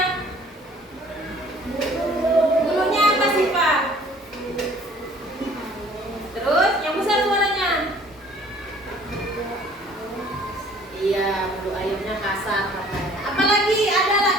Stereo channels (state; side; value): normal; both; correlation 0.54